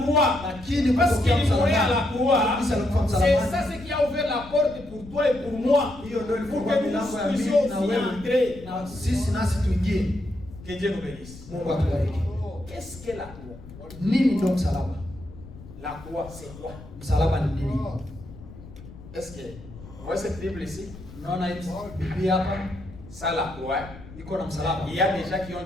croix, Lakini parce qu'il kutokea mourait à la msalabani, croix, kabisa alikufa c'est msalabani. ça ce qui a ouvert la porte pour toi et pour moi. Hiyo ndio Pour ilifungua que nous milango ya puissions mimi na aussi wewe entrer. na sisi nasi tuingie. Que Dieu nous bénisse. Mungu atubariki. Qu'est-ce que la croix? Nini ndio msalaba? La croix, c'est quoi? Msalaba ni nini? Est-ce que vous voyez cette Bible ici? Unaona hii Biblia hapa Ça, la croix. iko na msalaba. Il y a des gens qui ont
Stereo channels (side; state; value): left; noise; rumble, 17 dB below the sound